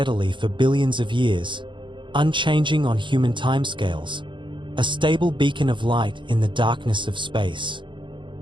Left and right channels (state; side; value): late; left; 0.23 ms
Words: for billions of years, unchanging on human timescales, a stable beacon of light in the darkness of space.